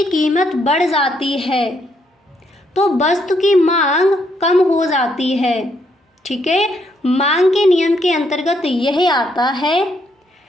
कीमत बढ़ जाती है तो वस्तु की मांग कम हो जाती है। ठीक है, मांग के नियम के अंतर्गत यह आता है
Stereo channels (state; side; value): normal; both; correlation 0.74